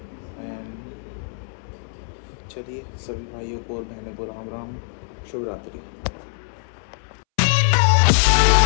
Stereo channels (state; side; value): silent; right; 63 dB below the other